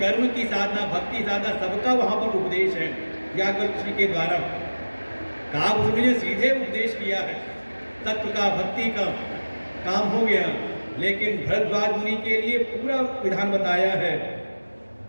की साधना, भक्ति साधना, सबका वहां पर उपदेश है व्याकुल जी के द्वारा। काव्य ने सीधे उपदेश किया है, तत्व का, भक्ति का काम हो गया, लेकिन भरद्वाज मुनि के लिए पूरा विधान बताया है।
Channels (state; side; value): inverted; both; correlation -1.00